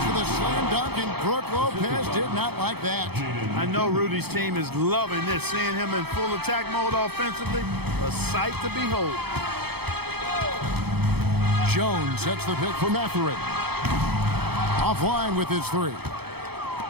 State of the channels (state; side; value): late; left; 0.97 ms